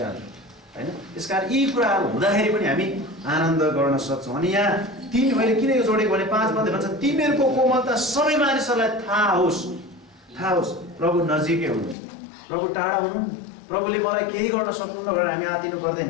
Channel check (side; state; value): right; drops out; at 12.0 s